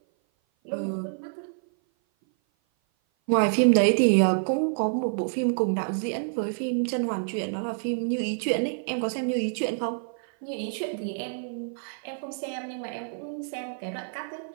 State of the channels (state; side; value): silent; left; 56 dB below the other